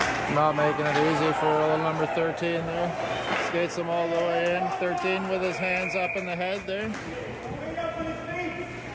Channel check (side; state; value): both; identical; correlation 1.00